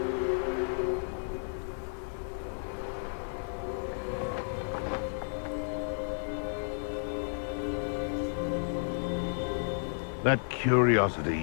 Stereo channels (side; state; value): right; silent; digital silence